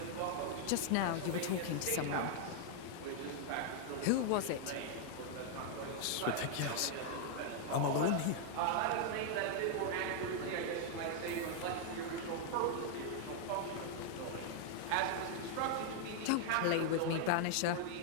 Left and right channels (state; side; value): different; both; correlation 0.00